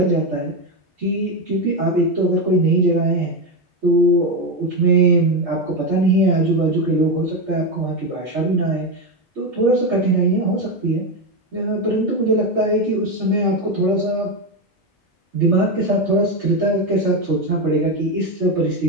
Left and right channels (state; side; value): normal; both; correlation 0.11